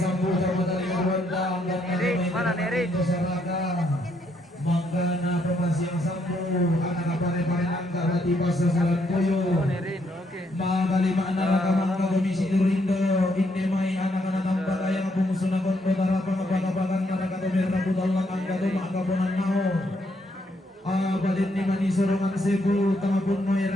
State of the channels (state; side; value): normal; both; correlation 0.74